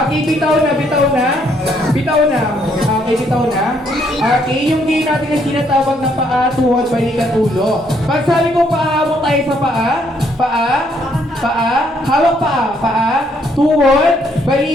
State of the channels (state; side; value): normal; both; correlation 0.70